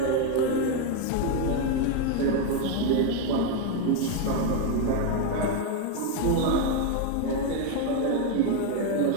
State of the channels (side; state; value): both; different; correlation 0.01